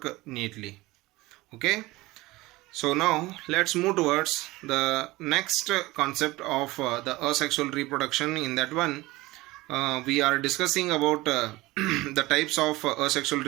neatly. Okay. So now let's move towards the next concept of the asexual reproduction. In that one, we are discussing about the types of asexual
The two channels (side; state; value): left; quieter; 20.1 dB